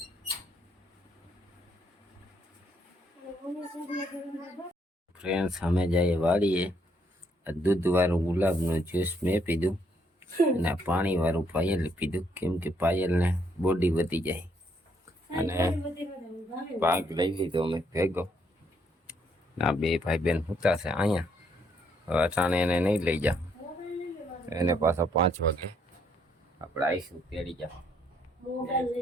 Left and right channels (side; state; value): both; normal; correlation 0.72